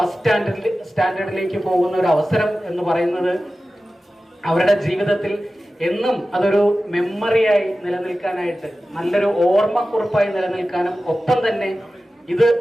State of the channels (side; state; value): both; normal; correlation 0.95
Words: സ്റ്റാൻഡേർഡിലേക്ക് പോകുന്ന ഒരു അവസരം എന്ന് പറയുന്നത് അവരുടെ ജീവിതത്തിൽ എന്നും അതൊരു മെമ്മറിയായി നിലനിൽക്കാനായിട്ട്, നല്ലൊരു ഓർമ്മക്കുറിപ്പായി നിലനിൽക്കാനും, ഒപ്പം തന്നെ ഇത്